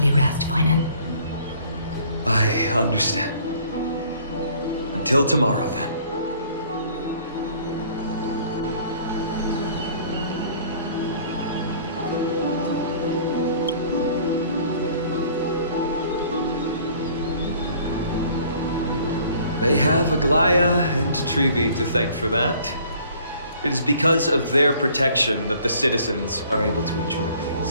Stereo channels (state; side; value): inverted; both; correlation -0.55